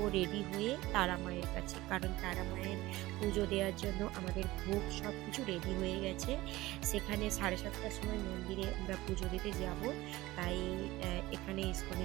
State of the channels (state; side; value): quieter; left; 18.5 dB